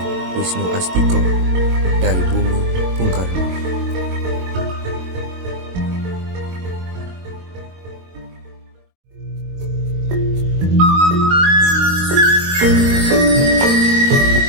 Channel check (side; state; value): left; late; 22 ms